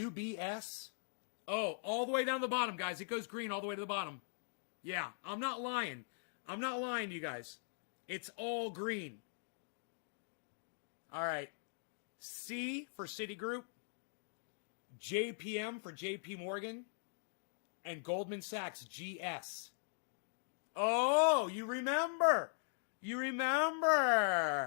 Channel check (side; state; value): right; silent; digital silence